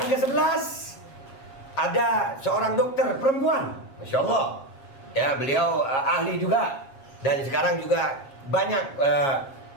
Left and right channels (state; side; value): late; right; 7.4 ms